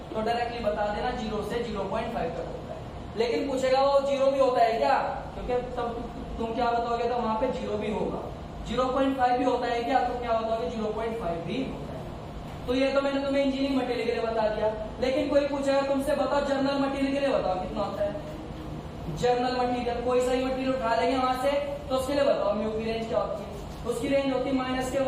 तो डायरेक्टली बता देना 0 से 0.5 तक होता है। लेकिन पूछेगा वो 0 भी होता है क्या, क्योंकि तब तुम क्या बताओगे, तो वहां पे 0 भी होगा। 0.5 भी होता है क्या, तो क्या बताओगे, 0.5 भी होता है। तो ये तो मैंने तुम्हें इंजीनियरिंग मटेरियल के लिए बता दिया। लेकिन कोई पूछेगा तुमसे, बताओ जर्नल मटेरियल के लिए बताओ कितना होता है। जर्नल मटेरियल, कोई सा ही मटेरियल उठा लेंगे वहां से, तो उसके लिए बताओ म्यू की रेंज क्या होती है। उसकी रेंज होती है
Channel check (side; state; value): both; identical; correlation 1.00